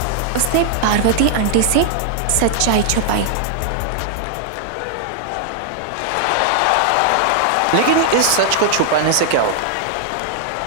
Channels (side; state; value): both; different; correlation -0.01